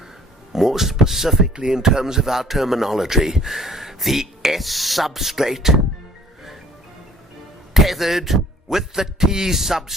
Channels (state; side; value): normal; both; correlation 0.55